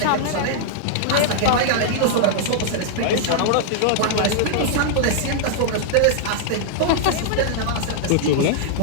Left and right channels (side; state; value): both; different; correlation -0.01